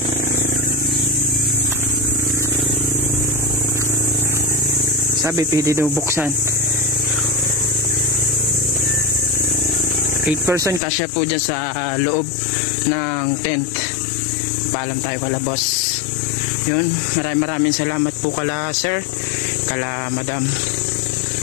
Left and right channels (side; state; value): right; drops out; at 10.8 s